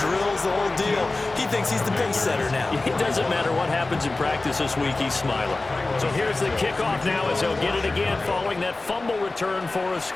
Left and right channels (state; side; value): quieter; right; 3.2 dB